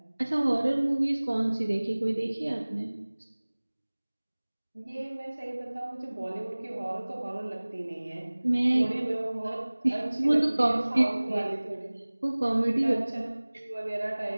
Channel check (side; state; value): both; inverted; correlation -1.00